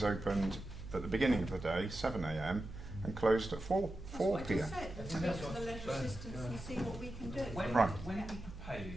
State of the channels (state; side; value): noise; right; hum, 12 dB below the sound